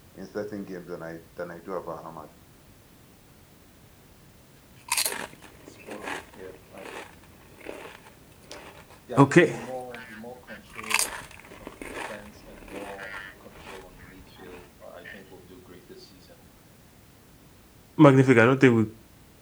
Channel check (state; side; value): identical; both; correlation 1.00